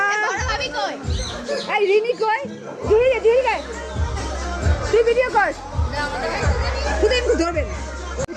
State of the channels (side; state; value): both; identical; correlation 1.00